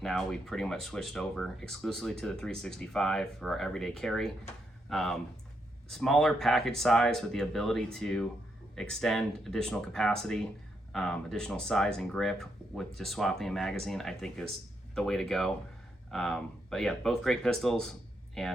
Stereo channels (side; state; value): both; normal; correlation 0.80